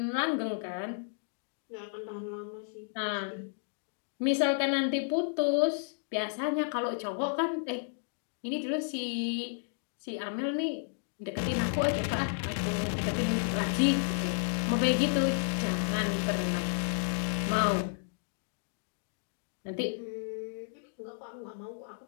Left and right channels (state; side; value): silent; right; digital silence